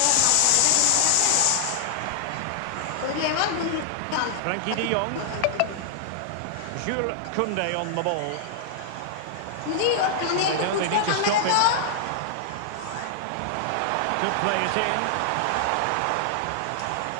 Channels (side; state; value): both; different; correlation -0.01